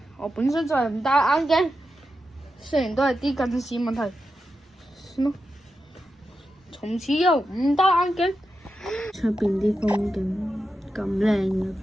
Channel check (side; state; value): both; normal; correlation 0.89